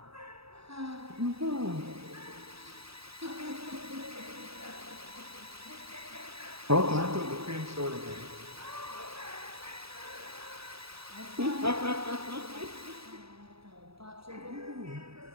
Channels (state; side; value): late; left; 0.77 ms